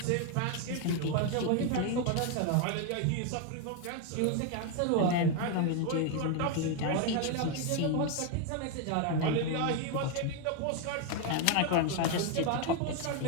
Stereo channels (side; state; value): both; different; correlation 0.01